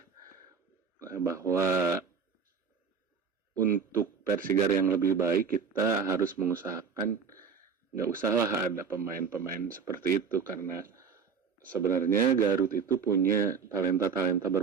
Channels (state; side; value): quieter; left; 6.0 dB